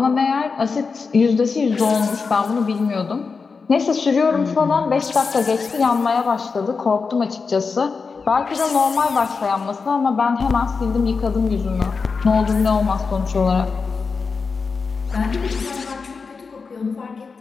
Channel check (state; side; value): quieter; right; 4.9 dB